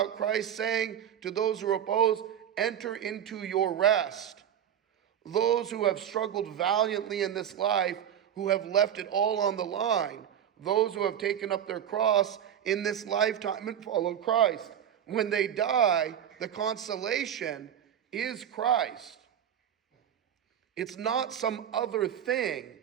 Christ saying to those who oppose, enter into your rest. Those who have struggled valiantly in this life, who have left it all on the line. Those who have taken up their cross in this lifetime and follow Christ. When they die, the consolation is Christ. It's not some other thing.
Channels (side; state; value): left; quieter; 9.6 dB